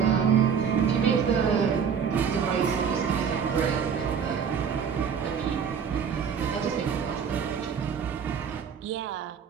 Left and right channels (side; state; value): left; quieter; 7.0 dB